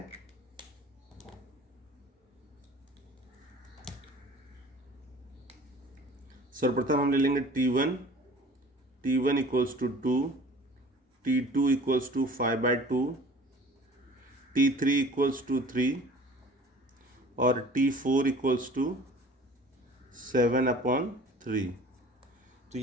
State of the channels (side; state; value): both; normal; correlation 0.46